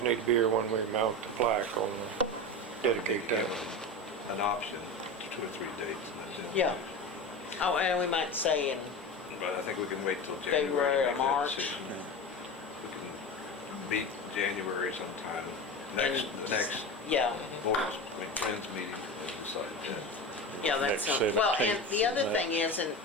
need to be here when we mount the plaque on the dedicate Give that. them an option, 2 or 3 dates, and that's it. yeah. Oh, and we might say in, But I think we can wait till February January or to make that March. decision. We can meet January sometime, next, And- the next yeah, boards, friends meeting, and decide that. yeah, that's, Next well, and 17th the other and thing is, and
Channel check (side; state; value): both; normal; correlation 0.26